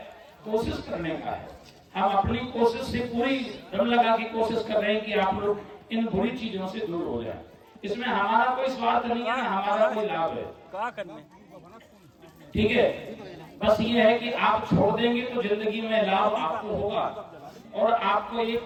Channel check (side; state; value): both; identical; correlation 1.00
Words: कोशिश करने का है। हम अपनी कोशिश से पूरी दम लगा के कोशिश कर रहे हैं कि आप लोग इन बुरी चीजों से दूर हो जाएं। इसमें हमारा कोई स्वार्थ नहीं है, हमारा कोई लाभ है। क्या करने? ठीक है, बस ये है कि आप छोड़ देंगे तो जिंदगी में लाभ आपको होगा। और आपको